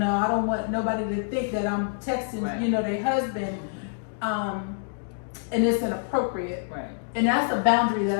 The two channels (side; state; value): right; silent; digital silence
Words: I don't want nobody to think that I'm texting, you know, their husband, and it's inappropriate. Right. And that's a boundary that